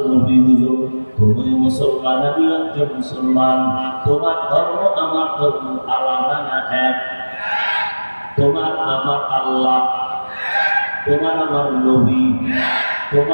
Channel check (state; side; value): inverted; both; correlation -1.00